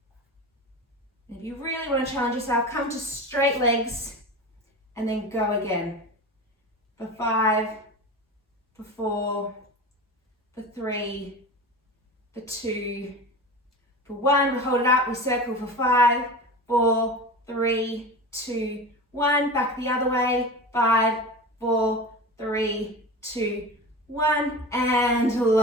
And if you really want to challenge yourself, come to straight legs and then go again. For 5, for 4, for 3, for 2, for 1. We hold it up, we circle for 5, 4, 3, 2, 1. Back the other way. 5, 4, 3, 2, 1. And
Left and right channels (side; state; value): both; normal; correlation 0.29